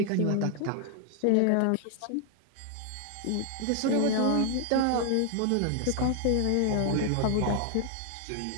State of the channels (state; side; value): different; both; correlation 0.00